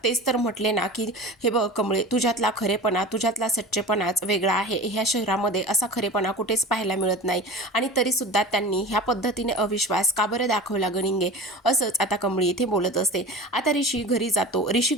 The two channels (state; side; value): normal; both; correlation 0.34